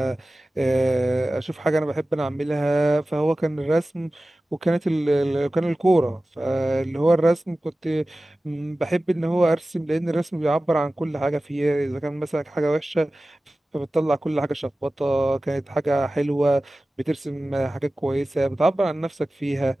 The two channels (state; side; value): normal; both; correlation 0.96